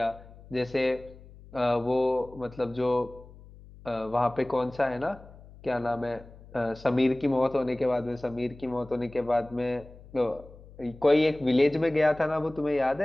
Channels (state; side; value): noise; left; hum, 20 dB below the sound